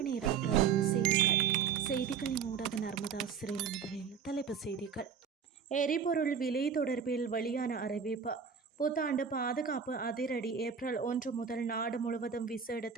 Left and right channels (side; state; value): left; quieter; 6.8 dB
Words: நேர பிரதான செய்திகளின் ஊடாக நர்மதா சிறையில் முதலில் தலைப்புச் செய்திகள். எரிபொருள் விலை தொடர்பில் வெளியான அறிவிப்பு. புத்தாண்டு பாதுகாப்பு அதிரடி. ஏப்ரல் 1 முதல் நாடு முழுவதும் விசேட